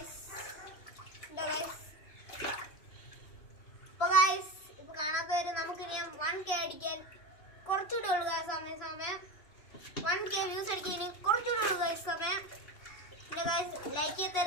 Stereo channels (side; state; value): right; late; 2.8 ms